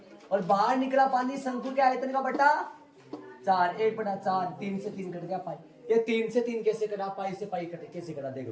और बाहर निकला पानी शंकु के आयतन का बटा 4 1/4 3 से 3 कट गया पाई ये 3 से 3 कैसे कटा पाई से पाई कटे कैसे कटा देख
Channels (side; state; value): both; identical; correlation 1.00